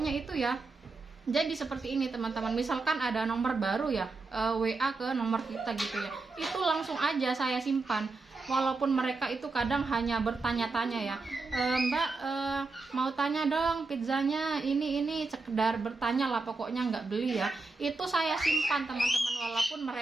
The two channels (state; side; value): quieter; left; 3.7 dB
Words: itu ya, jadi seperti ini teman-teman, misalkan ada nomor baru ya, WA ke nomor kita gitu ya, itu langsung aja saya simpan. Walaupun mereka itu kadang hanya bertanya-tanya ya, Mbak mau tanya dong pizzanya ini, sekedar bertanya lah, pokoknya nggak beli ya, itu saya simpan teman-teman, walaupun